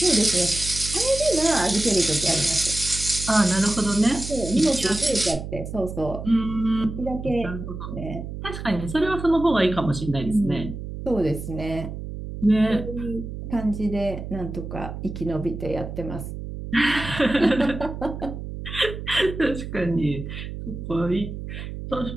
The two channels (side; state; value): right; noise; hum, 8 dB below the sound